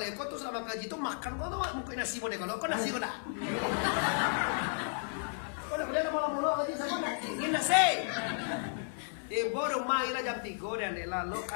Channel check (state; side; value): silent; right; digital silence